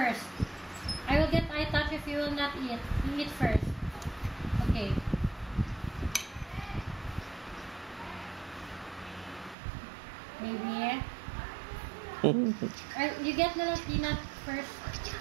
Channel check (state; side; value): drops out; left; at 9.6 s